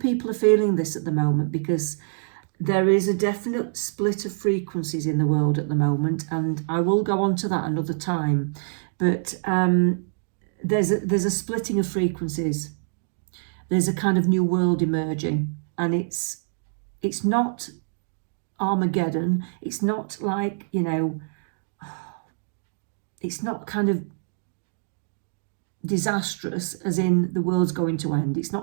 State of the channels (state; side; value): silent; left; digital silence